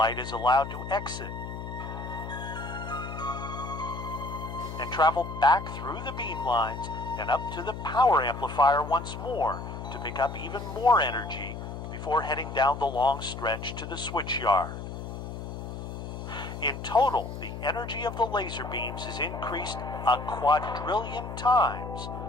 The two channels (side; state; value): left; noise; hum, 8 dB below the sound